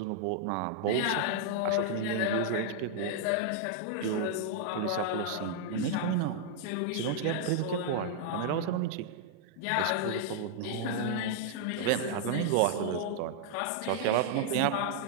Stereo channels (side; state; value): both; different; correlation -0.01